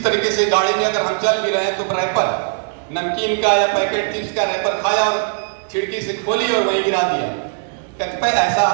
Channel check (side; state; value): left; silent; digital silence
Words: तरीके से गाड़ी में अगर हम चल भी रहे हैं तो रैपर नमकीन का या पैकेट चिप्स का रैपर खाया और खिड़की से खोली और वहीं गिरा दिया। कतिपय ऐसा